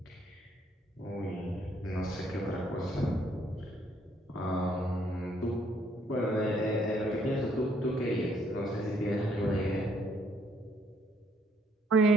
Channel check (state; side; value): normal; both; correlation 0.67